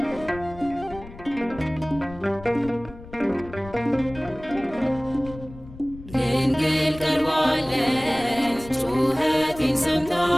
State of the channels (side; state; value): left; noise; rumble, 17 dB below the sound